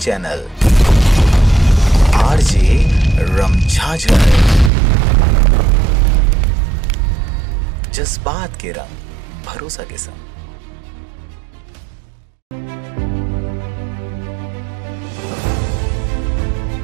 आरजे रमझाझर, जज्बात के रंग भरोसा के संग।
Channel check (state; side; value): drops out; left; at 4.7 s